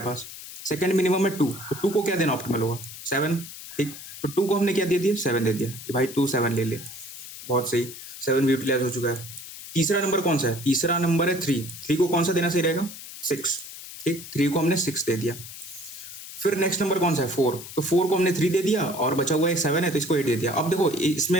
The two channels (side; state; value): left; noise; hiss, 13 dB below the sound